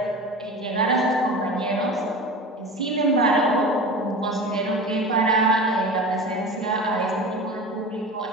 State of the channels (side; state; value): both; normal; correlation 0.32